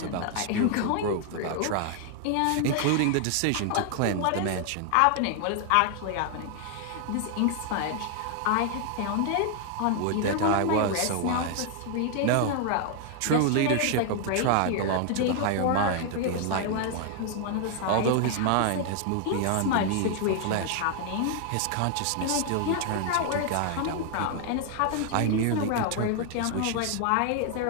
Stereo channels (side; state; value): both; different; correlation 0.00